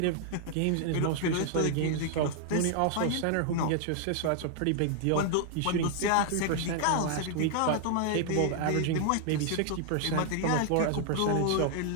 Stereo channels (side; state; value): both; different; correlation 0.00